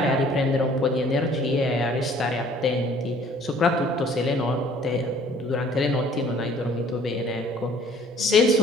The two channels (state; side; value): normal; both; correlation 0.56